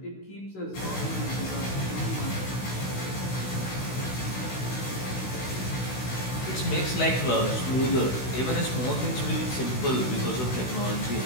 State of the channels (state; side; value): late; right; 16 ms